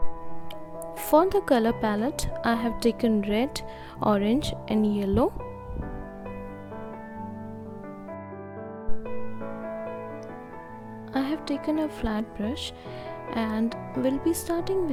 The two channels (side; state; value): both; identical; correlation 1.00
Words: For the color palette, I have taken red, orange and yellow. I have taken a flat brush and will be starting